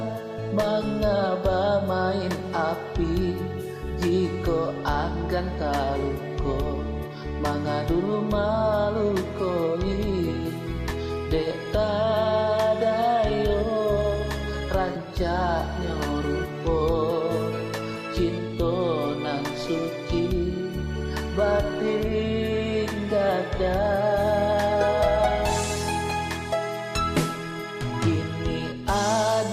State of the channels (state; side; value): identical; both; correlation 1.00